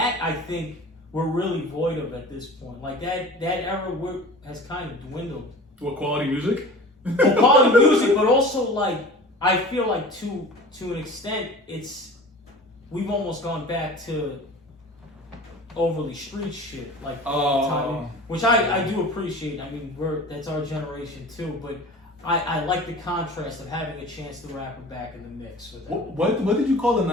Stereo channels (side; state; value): both; normal; correlation 0.39